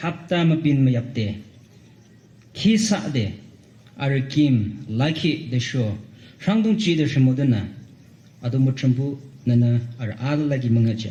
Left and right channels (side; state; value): both; identical; correlation 1.00